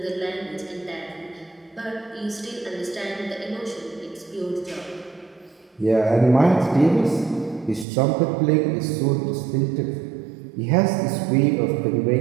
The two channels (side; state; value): left; drops out; at 7.9 s